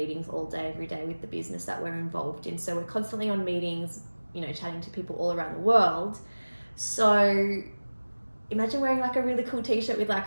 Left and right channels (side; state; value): both; inverted; correlation -1.00